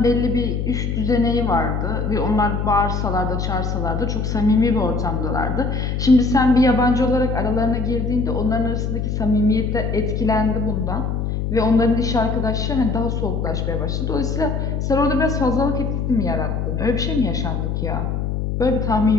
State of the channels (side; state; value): left; noise; hum, 1 dB below the sound